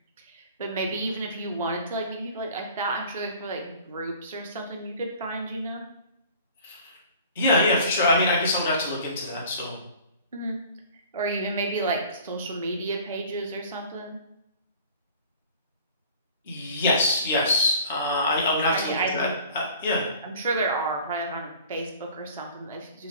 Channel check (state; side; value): inverted; both; correlation -0.46